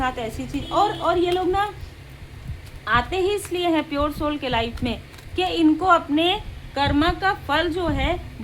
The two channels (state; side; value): identical; both; correlation 1.00